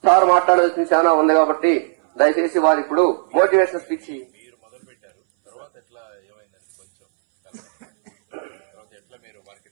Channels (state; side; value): silent; left; 62 dB below the other